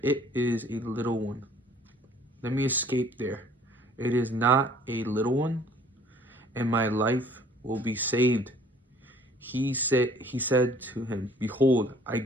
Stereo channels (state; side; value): normal; both; correlation 0.55